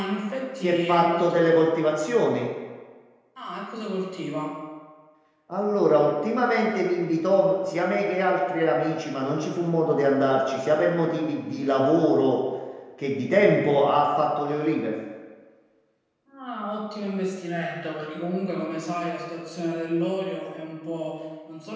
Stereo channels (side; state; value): both; identical; correlation 1.00